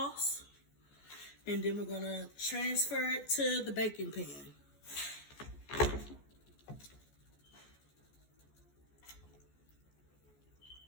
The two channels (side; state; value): right; late; 14 ms